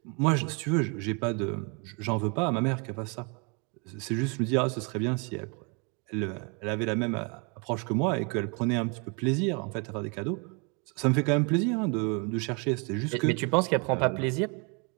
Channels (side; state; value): left; quieter; 33.2 dB